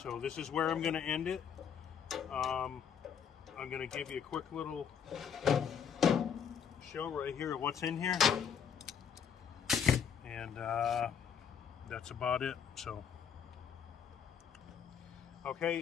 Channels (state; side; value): quieter; right; 7.6 dB